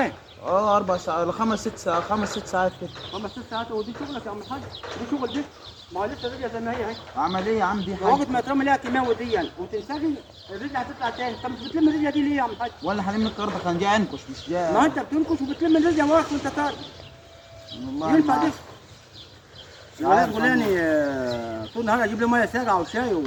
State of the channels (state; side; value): identical; both; correlation 1.00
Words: 4 ساعات 5 6 ساعات 5 6 ساعات كده. 5 6 ساعات. ودي شغلك يا عم الحاج؟ دي شغل دي؟ ما هو لسه الرجله زي ما هي اهي. اعمل ايه يا عم؟ دي حاجه وقت ما ترمي لها كيماوي دي يعني وتنسجي الرجله هتطلع تاني. انت مش بتلم الرجله دي ليه يا عم الحاج؟ ولا هلم الارض كان جاي انكش مش جاي. ما انت بتنكش وبتلم الرجله وراك وانت طالع. والله ينفع ما دي؟ الولاد فلاني طول النهار اجيب له ميه ساقعه وشاي